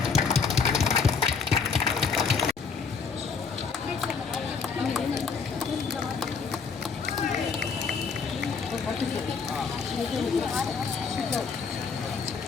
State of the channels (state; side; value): quieter; right; 5.4 dB